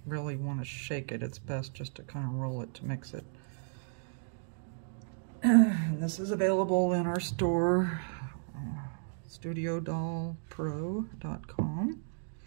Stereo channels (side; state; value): left; silent; digital silence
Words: really want to shake it. It's best just to kind of roll it to mix it. And this is available in our store, StudioDollPro.com.